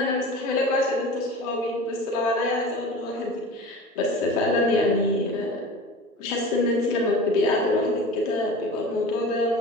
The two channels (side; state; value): both; normal; correlation 0.36